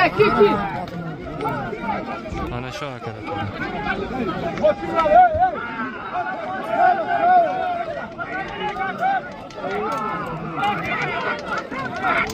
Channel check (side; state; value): both; identical; correlation 1.00